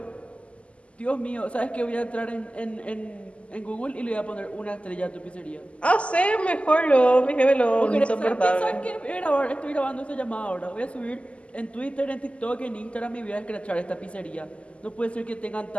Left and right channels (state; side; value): late; right; 0.058 ms